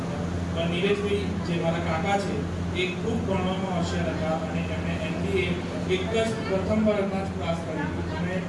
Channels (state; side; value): identical; both; correlation 1.00